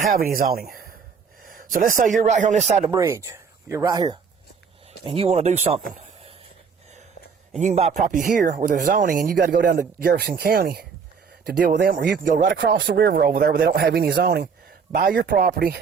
any zoning. So let's say you're right here on this side of the bridge. You're right here. And you want to do something. And you can buy property here where there's zoning, and you got to go down to Jefferson County to deal with them, or you can go right across the river over there where they don't have any zoning, buy your property,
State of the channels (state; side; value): quieter; left; 6.0 dB